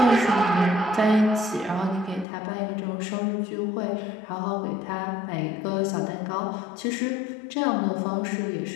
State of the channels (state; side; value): drops out; right; at 2.2 s